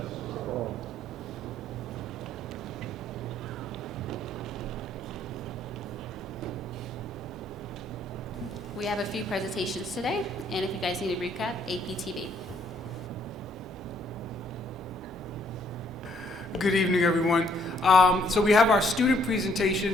We have a few presentations today, and if you guys need a recap, APTV. Good evening, everyone. So we have our student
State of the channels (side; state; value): both; normal; correlation 0.66